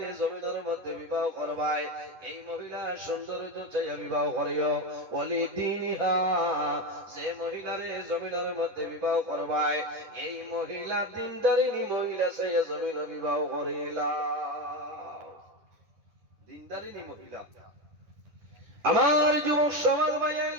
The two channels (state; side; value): late; left; 9.9 ms